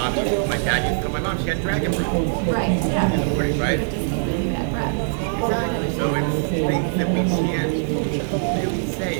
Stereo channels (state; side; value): silent; left; digital silence